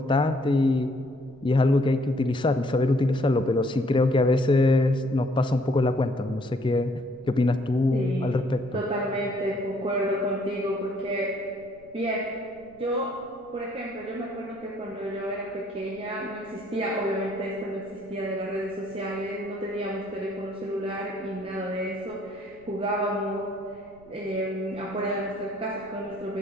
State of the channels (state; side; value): noise; right; rumble, 27 dB below the sound